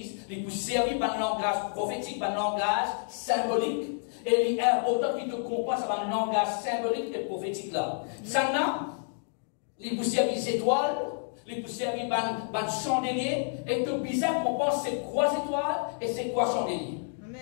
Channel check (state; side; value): silent; right; digital silence